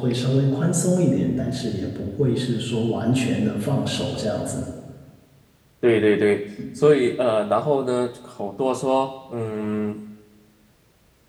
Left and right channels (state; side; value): identical; both; correlation 1.00